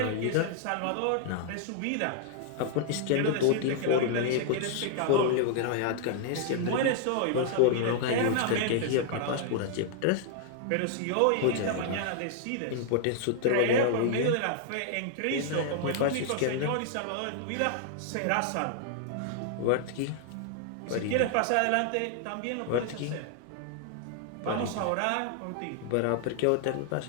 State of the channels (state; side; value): different; both; correlation -0.01